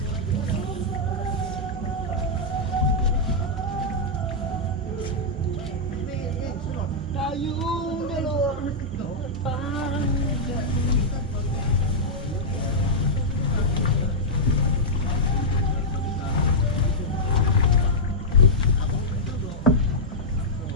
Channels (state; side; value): normal; both; correlation -0.07